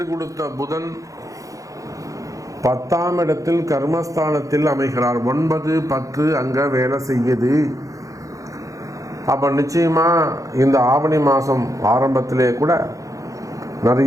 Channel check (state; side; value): late; left; 0.16 ms